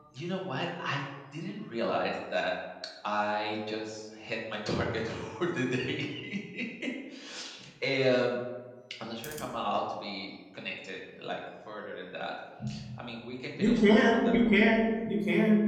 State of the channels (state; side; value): identical; both; correlation 1.00